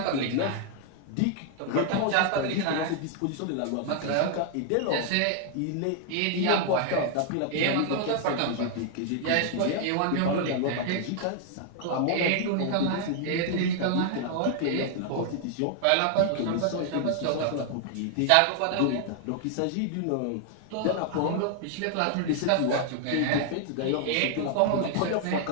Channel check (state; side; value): different; both; correlation 0.00